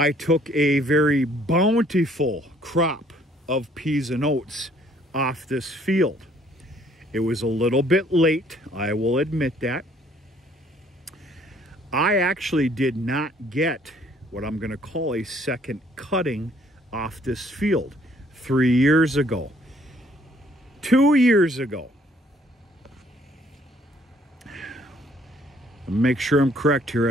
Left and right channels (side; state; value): both; normal; correlation 0.62